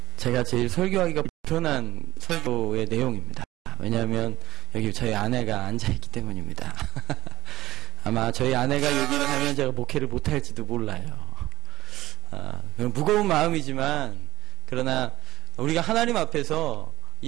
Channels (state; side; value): quieter; left; 16.2 dB